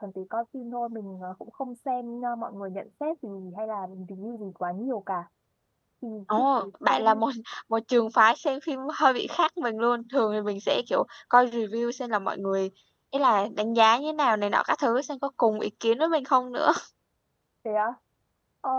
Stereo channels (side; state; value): both; identical; correlation 1.00